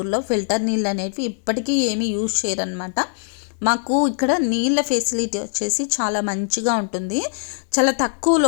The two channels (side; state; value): right; silent; 65 dB below the other